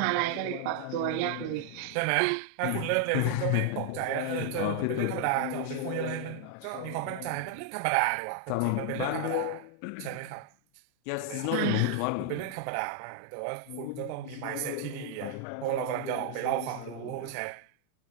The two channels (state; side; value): different; both; correlation 0.00